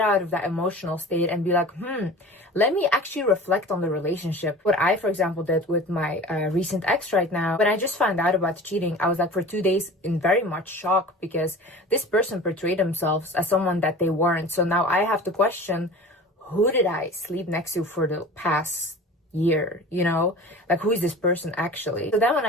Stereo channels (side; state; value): both; normal; correlation 0.39